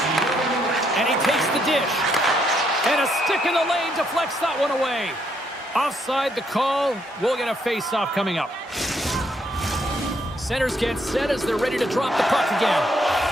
And he takes the dish. And a stick in the lane deflects that one away. Offside the call. We'll get a faceoff coming up. Centers get set as they're ready to drop the puck again.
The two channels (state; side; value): normal; both; correlation 0.73